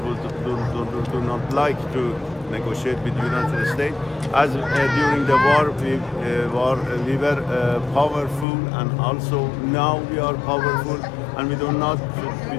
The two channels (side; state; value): right; drops out; at 8.5 s